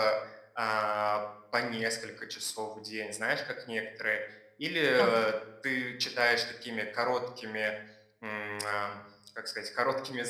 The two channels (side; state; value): both; identical; correlation 1.00